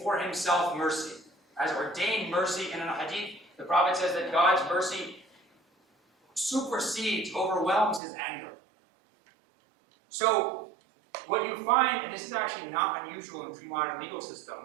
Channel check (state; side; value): drops out; left; at 8.0 s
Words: Himself mercy. Has ordained mercy in an hadith. The Prophet says that God's mercy supersedes, overwhelms His anger. So, what you find, and this is actually not unusual in pre-modern legal